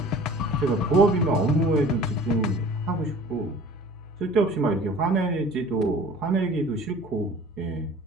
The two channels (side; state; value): both; normal; correlation 0.45